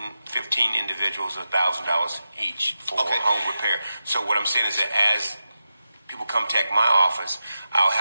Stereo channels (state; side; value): inverted; both; correlation -0.90